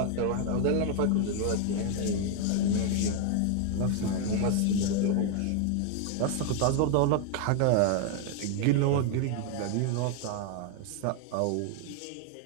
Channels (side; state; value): both; different; correlation 0.01